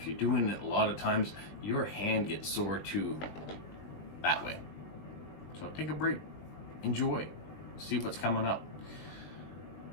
you're doing it a lot of times, your hand gets sore too that way. So take a break, enjoy, see what's coming up.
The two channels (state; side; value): late; right; 20 ms